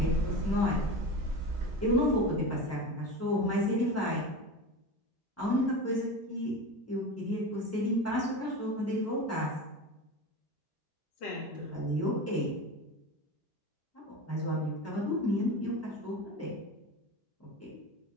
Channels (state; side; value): normal; both; correlation 0.28